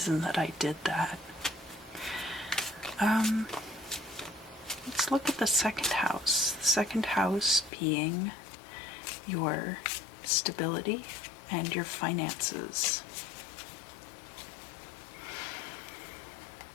that I did that. Let's look at the 2nd house. The 2nd house being your stability and your finances.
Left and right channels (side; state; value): right; drops out; at 7.7 s